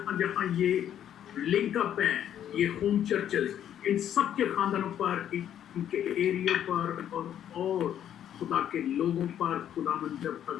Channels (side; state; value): right; quieter; 10.3 dB